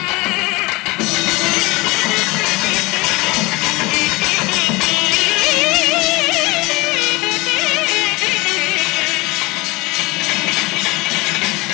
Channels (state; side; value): quieter; right; 23.4 dB